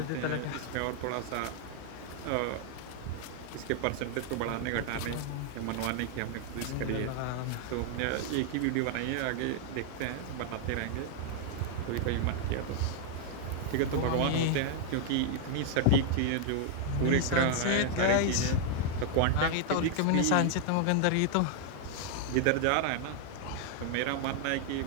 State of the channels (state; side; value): different; both; correlation 0.00